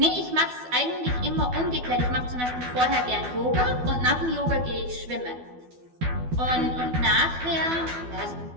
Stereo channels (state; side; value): late; left; 12 ms